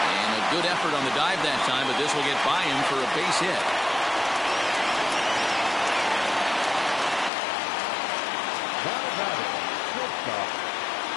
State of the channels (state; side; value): drops out; right; at 7.3 s